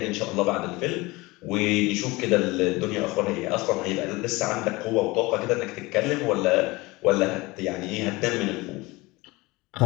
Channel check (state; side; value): quieter; right; 22.4 dB